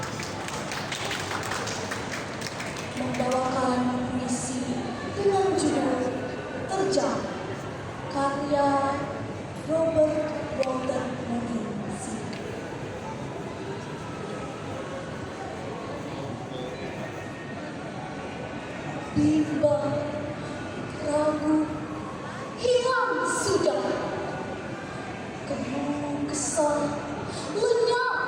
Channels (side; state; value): both; identical; correlation 1.00